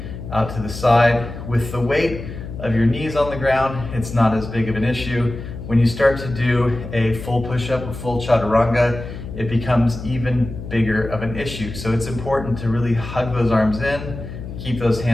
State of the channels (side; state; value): left; noise; hum, 10 dB below the sound